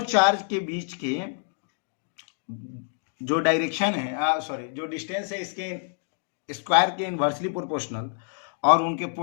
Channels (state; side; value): silent; right; digital silence